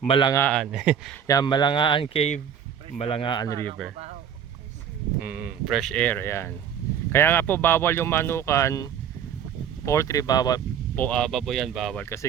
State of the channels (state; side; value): quieter; left; 8.5 dB